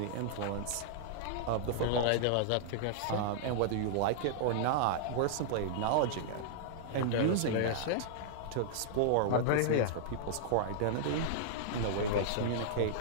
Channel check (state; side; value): different; both; correlation -0.01